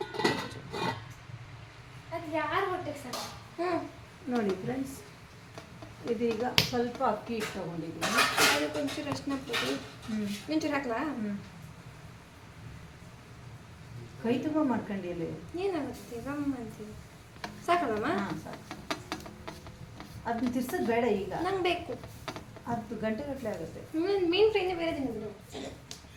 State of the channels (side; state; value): both; identical; correlation 1.00